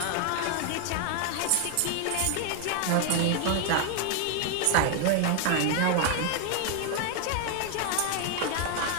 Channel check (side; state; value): both; different; correlation 0.00